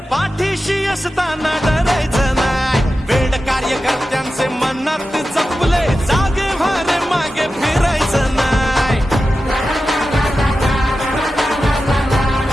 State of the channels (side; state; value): both; normal; correlation 0.93